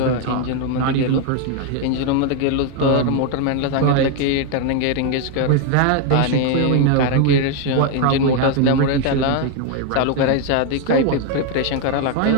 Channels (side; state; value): both; different; correlation 0.01